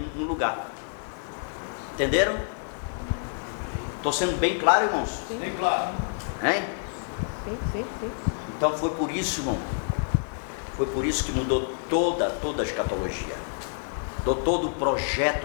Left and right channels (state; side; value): silent; right; digital silence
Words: no lugar. Entenderam? Estou sendo bem claro, irmãos? Bem claro. Hein? Sim. Então foi por isso, irmão. Foi por isso que mudou toda a escatologia. Mudou todo o